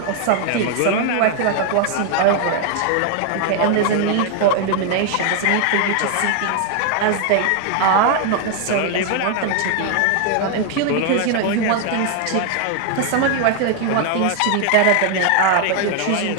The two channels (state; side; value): different; both; correlation 0.00